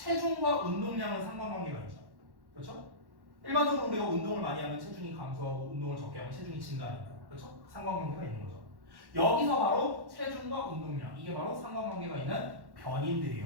운동량은 상관관계가 있죠. 그렇죠? 일반적으로 우리가 운동을 많이 하면 체중이 감소하고 운동을 적게 하면 체중이 증가하니까. 그렇죠? 상관관계가 있는 거죠. 여기서 바로 체중과 운동량 이게 바로 상관관계가 있는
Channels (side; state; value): left; late; 1.1 ms